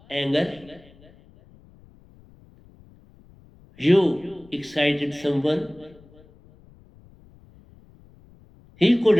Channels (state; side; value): noise; left; rumble, 27 dB below the sound